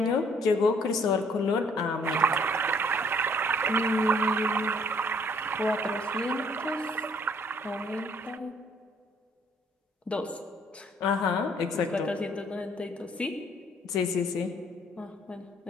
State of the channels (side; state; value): both; normal; correlation 0.62